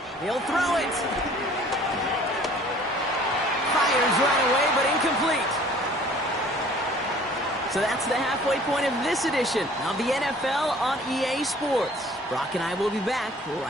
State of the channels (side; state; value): both; normal; correlation 0.52